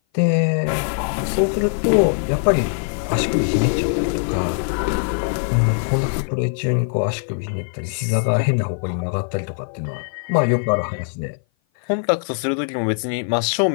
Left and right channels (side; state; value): right; silent; 56 dB below the other